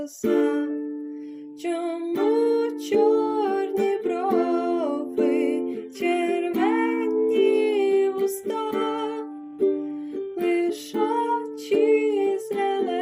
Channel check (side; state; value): both; identical; correlation 1.00